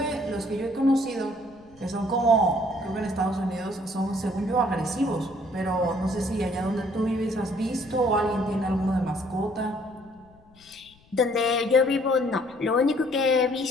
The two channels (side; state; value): left; noise; rumble, 29 dB below the sound